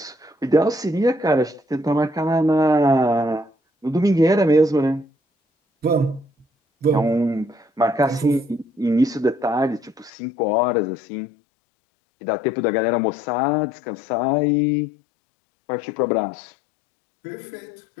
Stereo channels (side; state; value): right; drops out; at 10.1 s